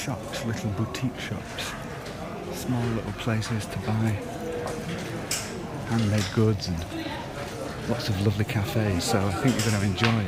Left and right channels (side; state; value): both; identical; correlation 1.00